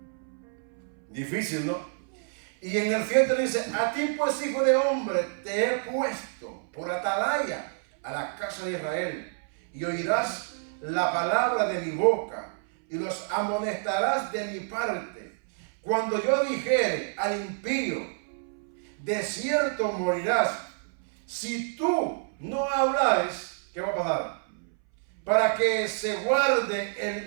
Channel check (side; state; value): left; silent; 59 dB below the other